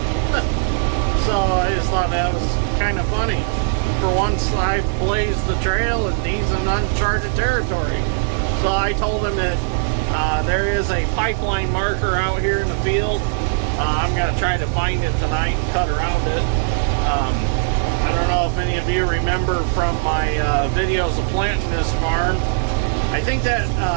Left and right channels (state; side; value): silent; left; digital silence